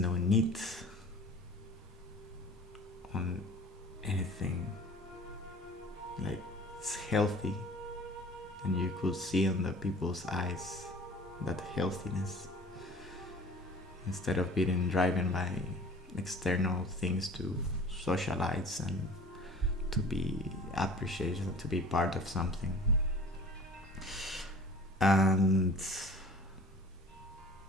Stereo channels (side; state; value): both; normal; correlation 0.44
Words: need on anything, like it's healthy, and you could see on the people's eyes that healthiness, instead of being driven by external things to socialize and to be appreciated, to be part of something. And